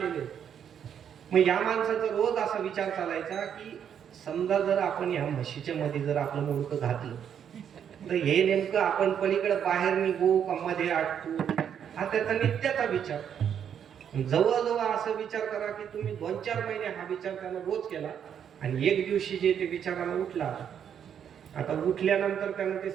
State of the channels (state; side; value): quieter; left; 8.6 dB